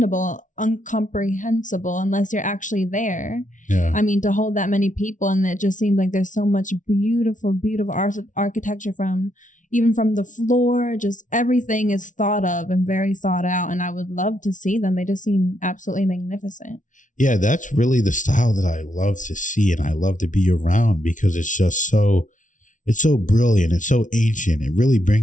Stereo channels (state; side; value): late; right; 0.37 ms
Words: unless you're actually there. Yeah. I mean, to hold that many people, and it just seems like there's so much beautiful architecture even from the floor. Just everything is thought of and very thought out, and I would love to see them. They just seem absolutely magnificent. Yeah, that's really the style that I love to see and I love to be around, because it's just it's so brilliant. It's so ancient. It really